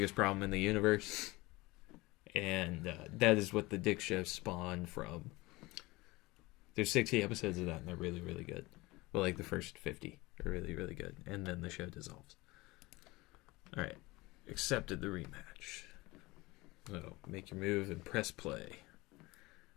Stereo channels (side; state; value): right; quieter; 21.8 dB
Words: Problem in the Universe. And that is what the Dick Show spawned from. There's 60 episodes of that, and they're really, really good. Well, like the first 50. are really, really good. And then the show dissolves. All right. Accepted the rematch. So make your move and press play.